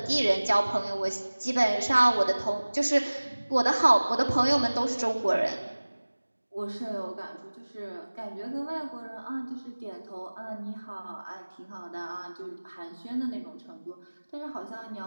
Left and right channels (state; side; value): inverted; both; correlation -1.00